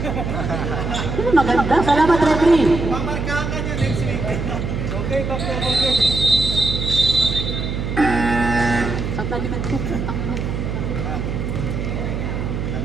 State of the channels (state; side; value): noise; right; hum, 3 dB below the sound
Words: Ayun, maganda. Salamat, referee. Mamarkahan ka niya next week. Okay, okay. Saan talikad ko?